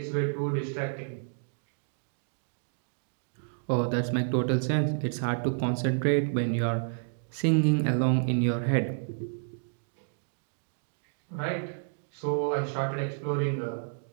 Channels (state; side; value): silent; left; digital silence